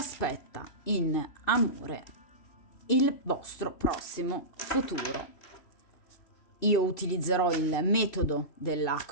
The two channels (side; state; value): right; late; 2.5 ms